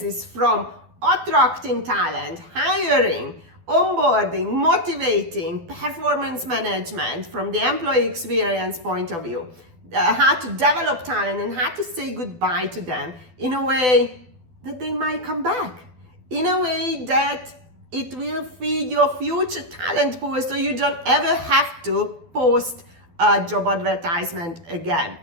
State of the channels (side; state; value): left; late; 12 ms